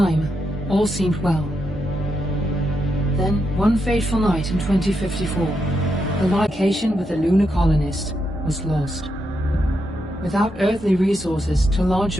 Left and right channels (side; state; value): both; normal; correlation 0.83